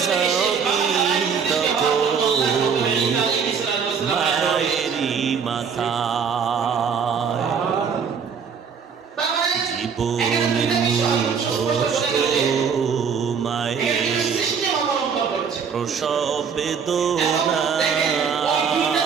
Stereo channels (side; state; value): left; quieter; 6.4 dB